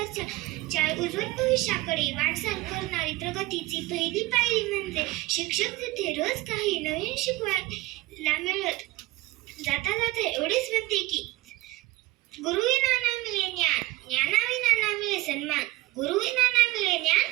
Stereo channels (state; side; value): quieter; left; 19.1 dB